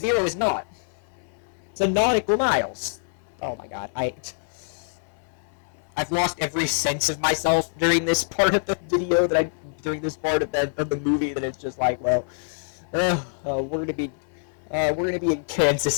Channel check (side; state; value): right; silent; 59 dB below the other